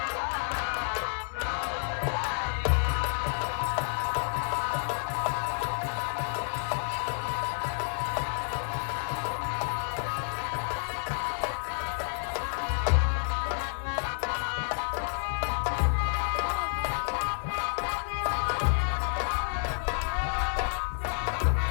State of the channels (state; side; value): silent; right; 58 dB below the other